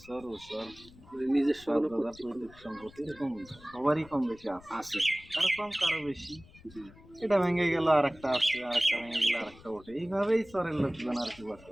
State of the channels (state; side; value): noise; left; rumble, 22 dB below the sound